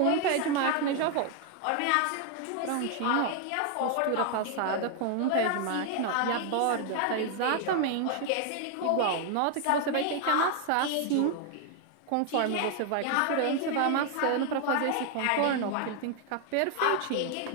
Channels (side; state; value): both; different; correlation 0.00